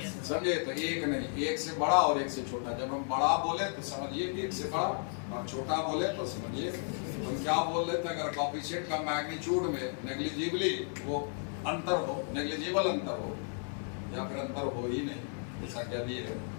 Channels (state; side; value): silent; right; 55 dB below the other